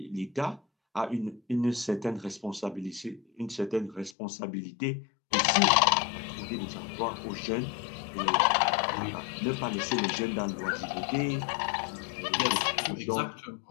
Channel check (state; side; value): drops out; right; at 4.2 s